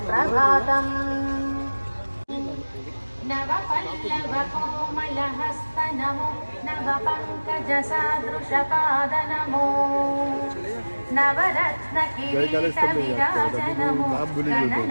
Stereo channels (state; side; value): inverted; both; correlation -1.00